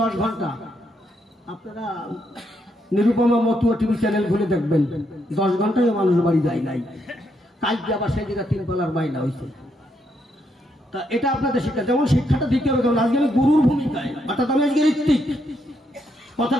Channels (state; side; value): normal; both; correlation 0.77